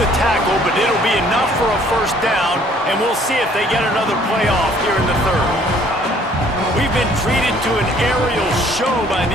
tackle, but it'll be enough for a first down, and we'll see if they get another play off here in the third. We've been treated to an aerial show by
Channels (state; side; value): normal; both; correlation 0.59